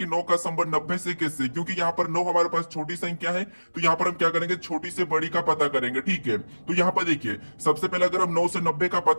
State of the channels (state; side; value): inverted; both; correlation -1.00